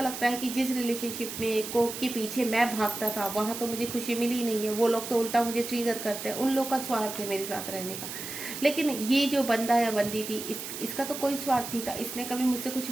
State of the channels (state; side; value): noise; right; hiss, 8 dB below the sound